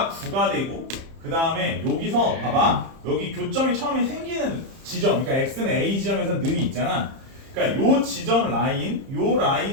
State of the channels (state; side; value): late; left; 30 ms